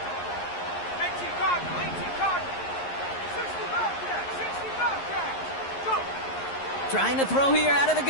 Trying to throw here out of the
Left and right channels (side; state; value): right; late; 11 ms